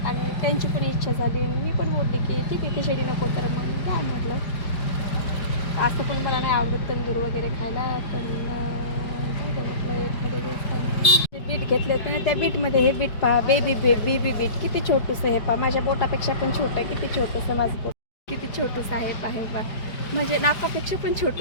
आणि त्यांची पण इच्छा झाली. मी पण बोलली की ठीक आहे खिचडी नको तर मग द्या म्हटलं. असं पण मला नाही आवडत तंदूर वगैरे खायला. पण म्हटलं एखाद्या दिवसाने बीट घेतले होते ना, त्या बीटमध्ये हे बीट पहा, बेबी बीट किती छोटंसं. हे पहा माझ्या बोटापेक्षा पण छोटं आहे. किती छोटंसं माझं बोट, किती छोटंसं आहे पहा. म्हणजे नाकापेक्षा पण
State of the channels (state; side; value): late; right; 5.0 ms